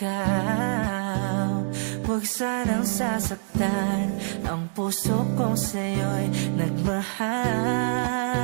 Huwag sanang sasaktan ang puso kong sa'yo'y nagmahal.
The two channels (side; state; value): left; silent; 61 dB below the other